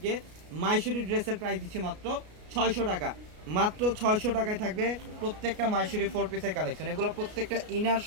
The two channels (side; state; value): left; late; 33 ms